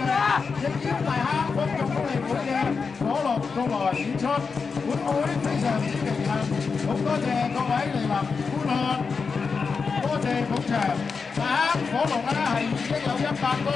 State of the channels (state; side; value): quieter; right; 5.1 dB